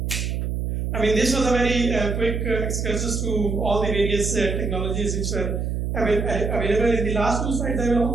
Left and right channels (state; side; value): noise; right; hum, 1 dB below the sound